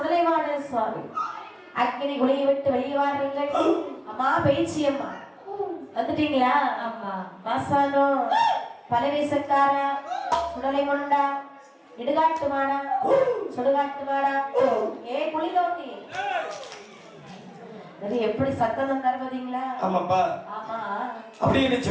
சுவாமி அக்கினி குளியை விட்டு வெளியே வாருங்கள். அம்மா பேச்சி அம்மா வந்துட்டீங்களா? ஆமா. மாசானோ பலவேசக்காரா, சுடலை கொண்டா, இடுகாட்டு மாடா, சுடுகாட்டு மாடா, ஏ குளி தோண்டி எப்படி சத்தம் தருவதீங்களா? ஆமாப்பா. ஆமா. அப்படின்னு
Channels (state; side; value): identical; both; correlation 1.00